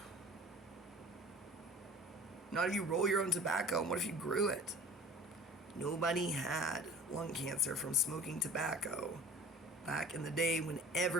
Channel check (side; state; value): both; normal; correlation 0.42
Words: Not if you roll your own tobacco, and what if you grew it? Nobody had lung cancer from smoking tobacco back in the day when